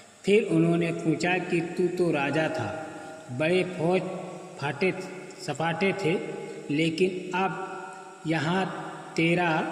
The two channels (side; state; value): both; identical; correlation 1.00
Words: फिर उन्होंने पूछा कि तू तो राजा था, बड़े फौज सपाटे थे, लेकिन अब यहाँ तेरा